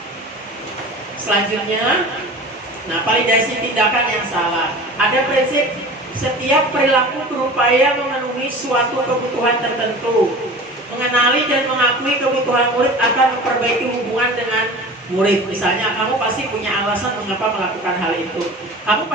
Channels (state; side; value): normal; both; correlation 0.37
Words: Selanjutnya, nah, validasi tindakan yang salah. Ada prinsip setiap perilaku berupaya memenuhi suatu kebutuhan tertentu. Mengenali dan mengakui kebutuhan murid akan memperbaiki hubungan dengan murid. Misalnya kamu pasti punya alasan mengapa melakukan hal itu. Kamu